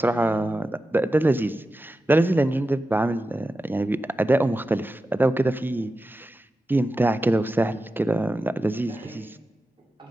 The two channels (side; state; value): both; normal; correlation 0.92